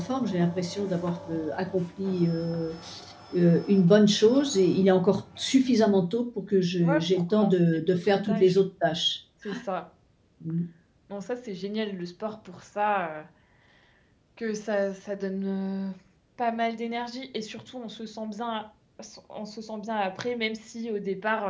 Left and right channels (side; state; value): both; identical; correlation 1.00